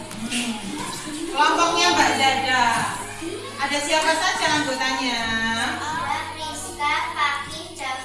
Kelompoknya Mbak Zada. Ada siapa saja anggotanya? Ada Priska, Fakih,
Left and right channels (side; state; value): both; identical; correlation 1.00